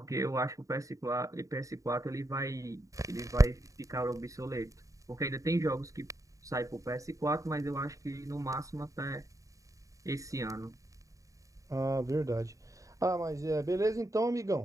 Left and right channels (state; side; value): late; left; 0.16 ms